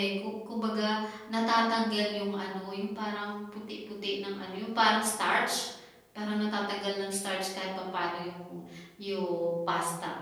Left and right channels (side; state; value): both; identical; correlation 1.00